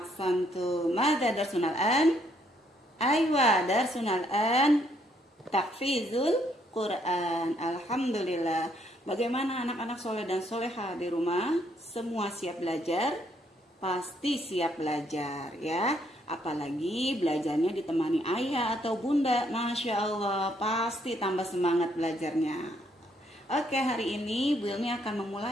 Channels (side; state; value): both; normal; correlation 0.71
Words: Madza darsuna al-an? Aywa, darsuna al-an tahfizul Quran. Alhamdulillah. Bagaimana anak-anak soleh dan soleha di rumah? Semua siap belajar? Pasti siap belajar ya. Apalagi belajarnya ditemani ayah atau bunda. Masya Allah, pasti tambah semangat belajarnya. Oke, hari ini Bu Ilmi akan